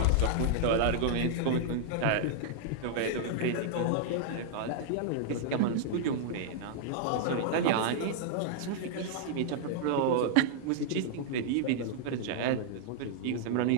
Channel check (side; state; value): both; different; correlation -0.01